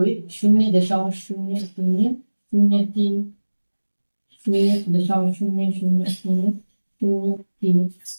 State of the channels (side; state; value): both; inverted; correlation -1.00